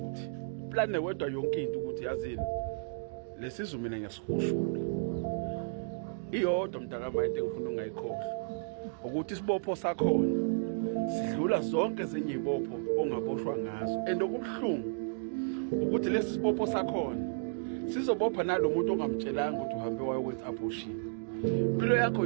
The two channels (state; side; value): silent; left; digital silence